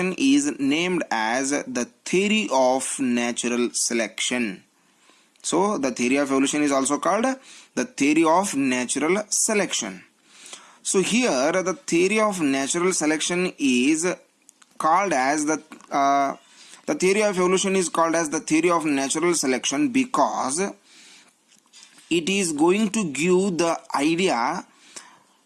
is named as the theory of natural selection. So the theory of evolution is also called the theory of natural selection. So here the theory of natural selection is called as the theory of evolution is called as the theory of natural selection because it is going to give the idea,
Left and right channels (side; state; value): both; identical; correlation 1.00